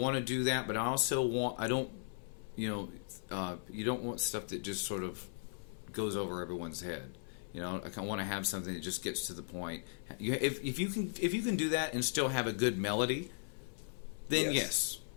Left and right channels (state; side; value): silent; right; 53 dB below the other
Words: to do that, but I also you don't want stuff that just sort of goes over everyone's head. I want to have something that just gets to the point. If you can do that and still have a good melody, then yes.